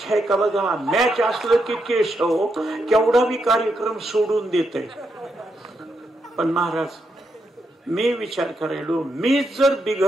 आहे का बघा, मॅच असलं की केशव केवढा बी कार्यक्रम सोडून देते. पण महाराज, मी विचार करायलो, मी जर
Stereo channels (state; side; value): normal; both; correlation 0.82